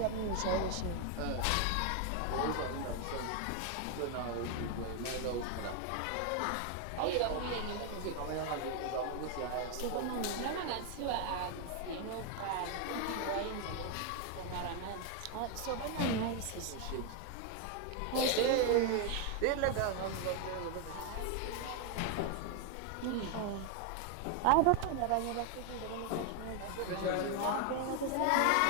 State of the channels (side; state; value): both; different; correlation 0.01